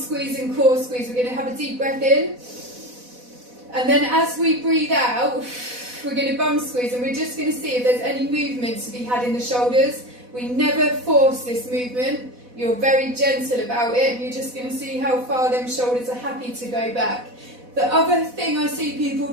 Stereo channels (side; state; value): left; late; 4.1 ms